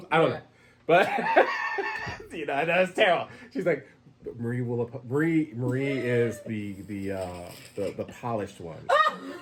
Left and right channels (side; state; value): both; identical; correlation 1.00